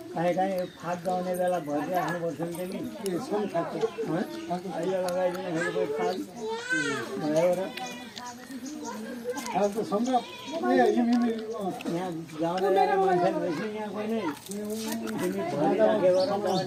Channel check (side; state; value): both; identical; correlation 1.00